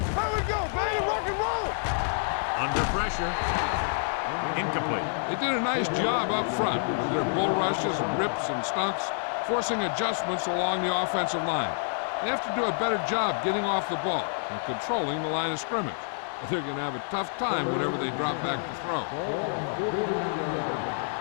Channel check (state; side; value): silent; right; digital silence